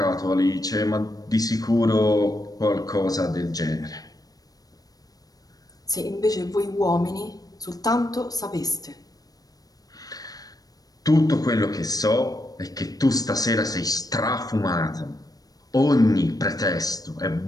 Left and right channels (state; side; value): late; right; 0.18 ms